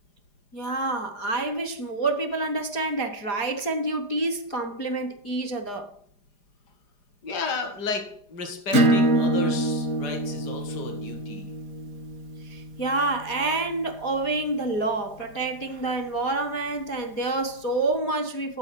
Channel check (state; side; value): late; right; 4.9 ms